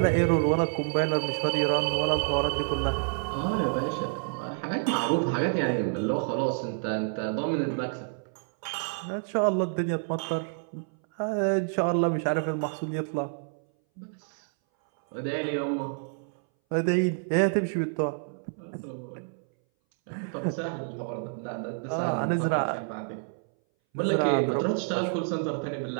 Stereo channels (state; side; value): silent; left; 59 dB below the other